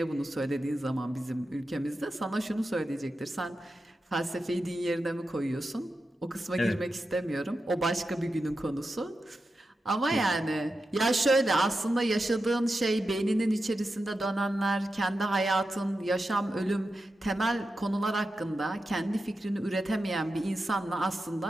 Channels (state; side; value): normal; both; correlation 0.90